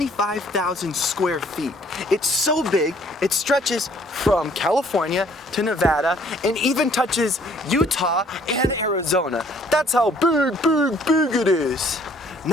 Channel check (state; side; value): normal; both; correlation 0.60